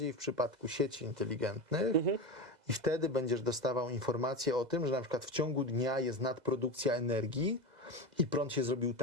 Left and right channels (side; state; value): left; late; 2.0 ms